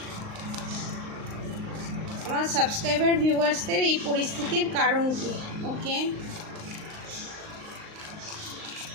আমার সাবস্ক্রাইবার ভিউয়ার্সদের এই পরিস্থিতির কারণ কি। ওকে,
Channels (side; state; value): left; late; 38 ms